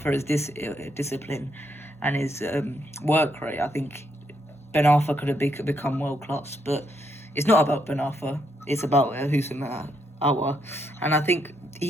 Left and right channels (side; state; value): both; normal; correlation 0.76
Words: for his discipline and his work rate, I think Ben Arfa could have become world class. But it's not about Ben Arfa. It's about Houssem Aouar. And I think